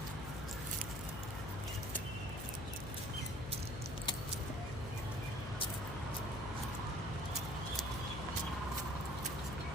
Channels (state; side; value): noise; left; hum, 5 dB below the sound